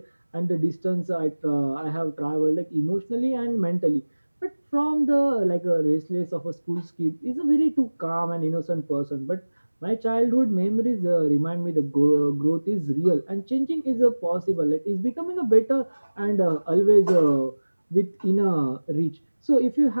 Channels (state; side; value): inverted; both; correlation -1.00